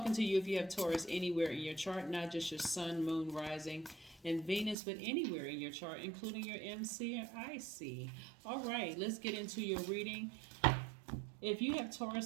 to you if you have Taurus anywhere in your chart, not just your Sun, Moon, Rising, and Venus, but anywhere in your chart, including your MC and IC. All right, let's get into your reading. If you have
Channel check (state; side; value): drops out; left; at 4.8 s